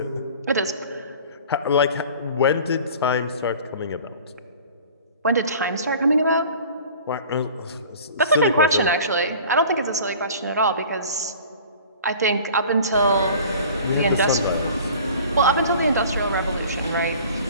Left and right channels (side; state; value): both; inverted; correlation -0.44